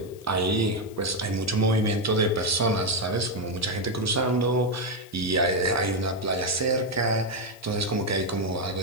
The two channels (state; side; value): noise; left; hiss, 24 dB below the sound